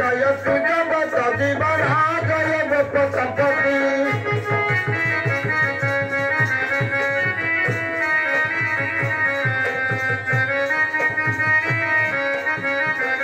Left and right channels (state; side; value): identical; both; correlation 1.00